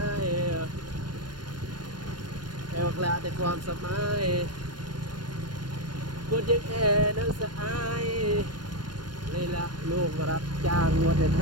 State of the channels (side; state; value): left; late; 0.71 ms